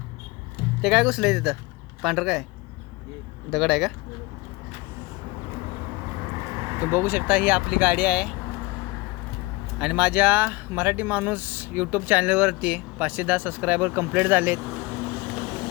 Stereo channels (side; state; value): right; quieter; 23.4 dB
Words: ते काय घुसलंय तिथं? पांढरं काय दगड आहे का? तुम्ही बघू शकता ही आपली गाडी आहे आणि माझ्या मराठी माणूस यूट्यूब चॅनलवरती 510 सबस्क्रायबर कंप्लीट झालेत।